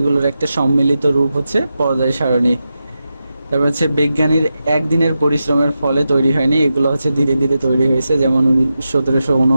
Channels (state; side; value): inverted; both; correlation -0.90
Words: একটা সম্মিলিত রূপ হচ্ছে পর্যায় সারণী। তারপর হচ্ছে বিজ্ঞানীর একদিনের পরিশ্রমের ফলে তৈরি হয়নি, এগুলো হচ্ছে ধীরে ধীরে তৈরি হয়েছে। যেমন